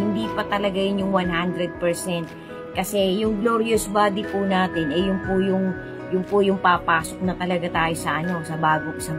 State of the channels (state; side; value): identical; both; correlation 1.00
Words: pa talaga yun yung 100%. Kasi yung glorious body po natin, yun po yung papasok na talaga tayo sa